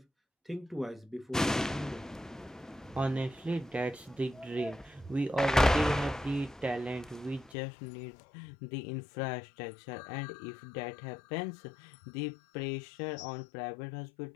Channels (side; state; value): right; drops out; at 7.6 s